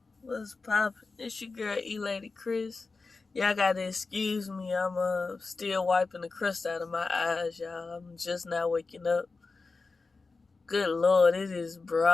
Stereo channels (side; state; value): right; quieter; 4.0 dB